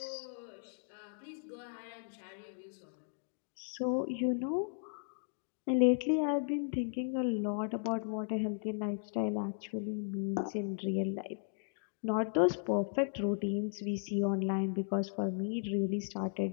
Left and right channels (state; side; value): silent; right; digital silence